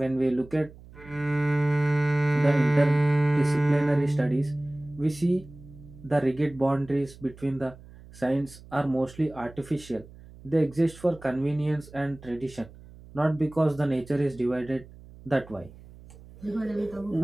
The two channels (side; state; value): right; noise; hum, 20 dB below the sound